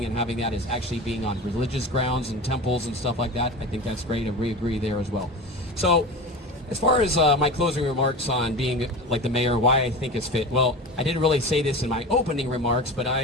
and having that is actually being on religious grounds and temples and stuff like that. I think that's great, and we agree there as well. So as far as my closing remarks on being like the mayor, why I think it's fit. Well, I didn't really say this in my opening remarks, but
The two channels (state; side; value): normal; both; correlation 0.30